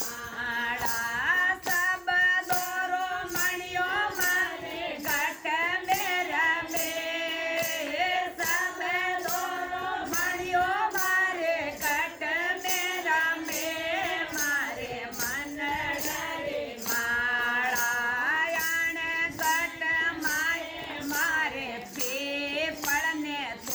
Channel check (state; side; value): identical; both; correlation 1.00